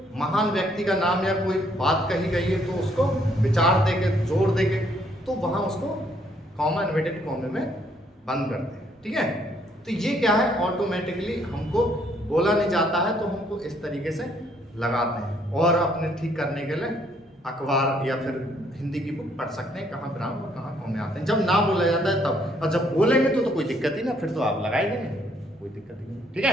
महान व्यक्ति का नाम या कोई बात कही गई है तो उसको विचार देके जोर देके तो वहां उसको कॉमा इन्वर्टेड कॉमे में बंद करते हैं। ठीक है, तो ये क्या है, ऑटोमेटिकली हमको बोला नहीं जाता है तो हमको इस तरीके से लगाते हैं। और अपने ठीक करने के लिए अखबार या फिर हिंदी की बुक पढ़ सकते हैं, कहाँ विराम और कहाँ कॉमे आते हैं। जब ना बोला जाता है तब, और जब बोलेंगे तो कोई दिक्कत ही ना, फिर तो आप लगा ही देंगे, कोई दिक्कत ही नहीं। ठीक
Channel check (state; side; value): normal; both; correlation 0.68